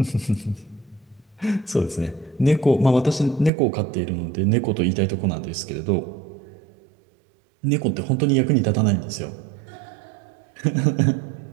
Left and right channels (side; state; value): left; drops out; at 3.5 s